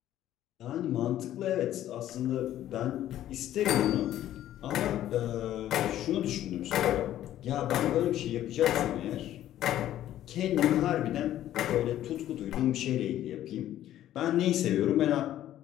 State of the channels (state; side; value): quieter; right; 12.6 dB